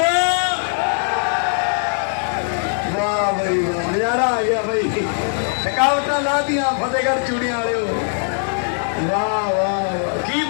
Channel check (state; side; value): silent; right; 66 dB below the other